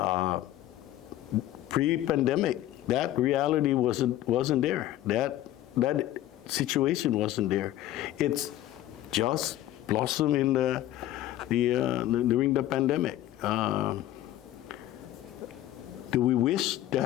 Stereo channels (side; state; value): right; quieter; 13.9 dB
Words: Pre-pandemic, that reality wasn't there. That situation wasn't there. It's just blossomed in during the pandemic. Do we wish